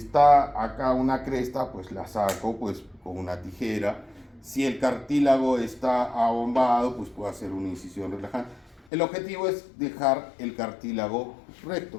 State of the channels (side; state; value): right; drops out; at 8.8 s